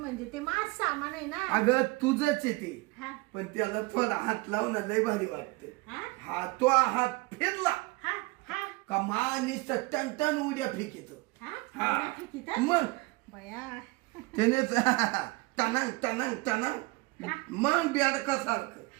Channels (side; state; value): left; quieter; 24.3 dB